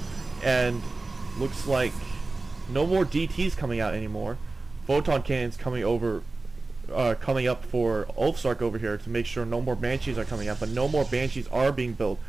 and looks like no more DTs coming out anymore. Photon cannons coming up for Ulfsark over here to make sure no more Banshees are coming out, but no more Banshees are being built.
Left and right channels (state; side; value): quieter; left; 3.4 dB